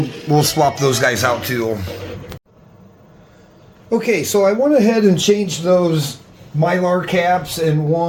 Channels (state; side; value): identical; both; correlation 1.00